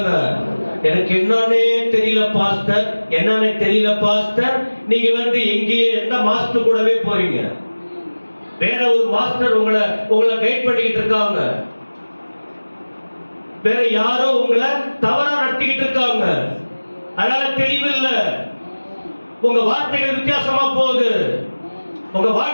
எனக்கு என்னன்னே தெரியல பாஸ்டர், என்னன்னே தெரியல பாஸ்டர். நீங்க எங்கேயே எந்த மாஸ்டர் கூடவே போறீங்க, வேற ஒரு மாஸ்டர் உங்களை கைட் பண்ணிக்கிட்டு இருக்காங்க, வேற யாரோ உங்களை தவறா நடத்திக்கிட்டு இருக்காங்க, அதனால தெளிவில்லை, உங்க வார்த்தைகள் வித்தியாசமா போகுது, உங்க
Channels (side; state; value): both; inverted; correlation -1.00